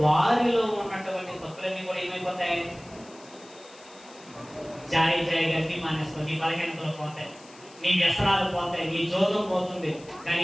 వారిలో ఉన్నటువంటి తప్పులన్నీ కూడా ఏమైపోతాయి? జాయిగా అన్ని మానేస్తావు, నీ బలహీనతలు పోతాయి, నీ వ్యసనాలు పోతాయి, నీ జోదం పోతుంది.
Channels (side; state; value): left; noise; hiss, 23 dB below the sound